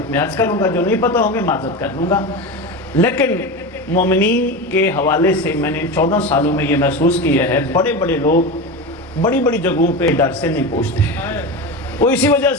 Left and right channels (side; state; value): both; normal; correlation 0.23